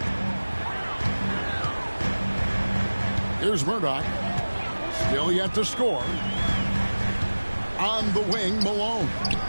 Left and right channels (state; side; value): inverted; both; correlation -1.00